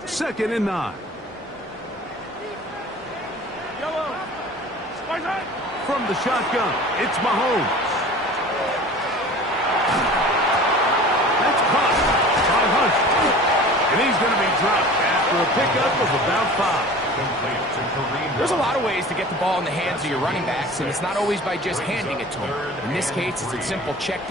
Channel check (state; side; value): normal; both; correlation 0.41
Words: 2nd and 9. From the shotgun, it's Mahomes. That's caught by Hunt. And he's going to be dropped after a pickup of about 5. There's a lot of ways to get the ball in the hands of your running backs, and it's not always by just handing it to them. In this case, it's a simple check